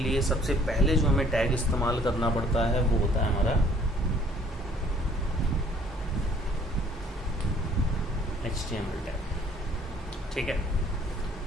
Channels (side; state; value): both; normal; correlation 0.58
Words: सबसे पहले जो हमें टैग इस्तेमाल करना पड़ता है वो होता है हमारा HTML टैग, ठीक है।